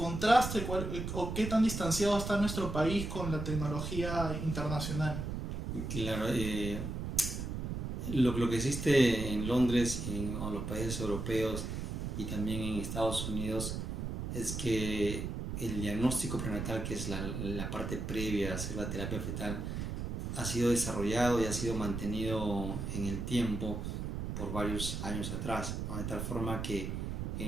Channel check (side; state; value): right; noise; rumble, 4 dB below the sound